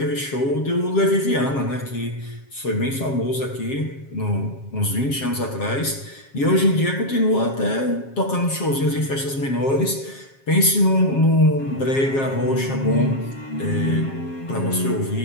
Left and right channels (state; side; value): late; right; 7.4 ms